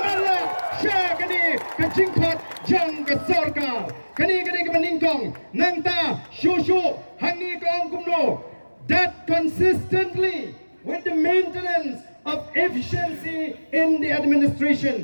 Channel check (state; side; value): inverted; both; correlation -1.00